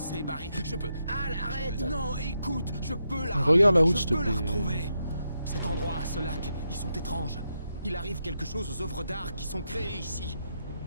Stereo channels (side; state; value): both; inverted; correlation -0.83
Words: Barry. Je peux... Al, arrête. Non, écoute, je peux la... Regarde la route, s'il te Je peux plaît. la retrouver. Cet endroit, ce lac, ils sont étranges. Il arrive quelque chose aux œuvres d'art qui sont créées ici.